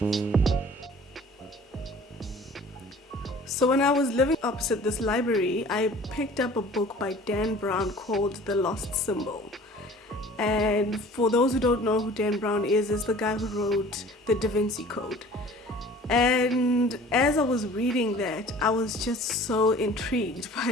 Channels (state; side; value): normal; both; correlation 0.47